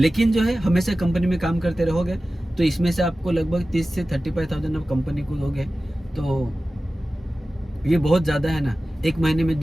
जो है हमेशा कंपनी में काम करते रहोगे तो इसमें से आपको लगभग 30 से 35,000 आप कंपनी को दोगे तो ये बहुत ज़्यादा है ना, 1 महीने में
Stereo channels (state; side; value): normal; both; correlation 0.96